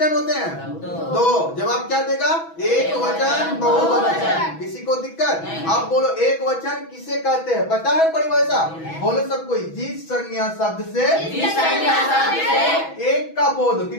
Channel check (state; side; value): late; right; 6.1 ms